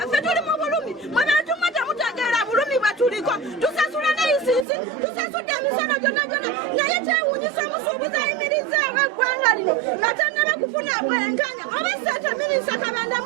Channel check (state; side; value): drops out; left; at 4.7 s